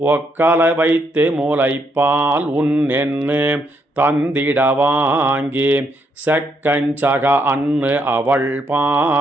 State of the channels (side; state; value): both; normal; correlation 0.76